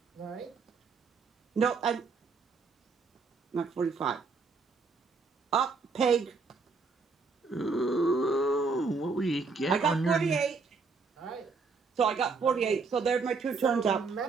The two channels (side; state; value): left; quieter; 4.5 dB